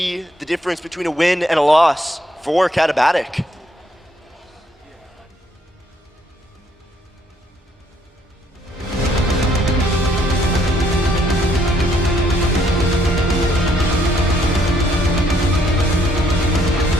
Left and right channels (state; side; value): normal; both; correlation 0.69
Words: the difference between a win and a loss for Catabatic.